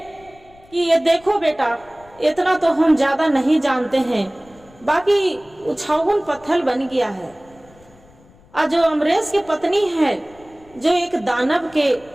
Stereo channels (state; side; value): noise; left; rumble, 27 dB below the sound